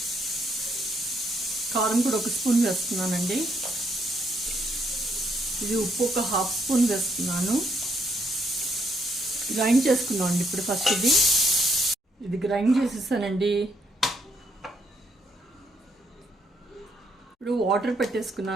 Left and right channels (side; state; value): both; normal; correlation 0.74